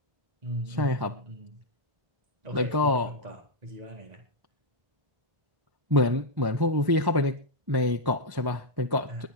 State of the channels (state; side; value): late; left; 1.1 ms